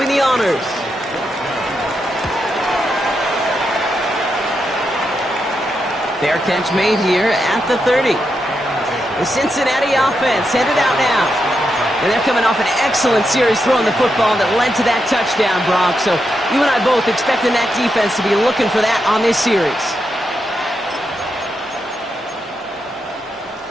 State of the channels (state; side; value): normal; both; correlation 0.84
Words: the honors. Fair catch made here at the 30. The Cincinnati offense headed out now. And they're coming off an excellent series throwing the football that led to that touchdown, Brock. So you and I both expecting that defense to be looking for that on this series.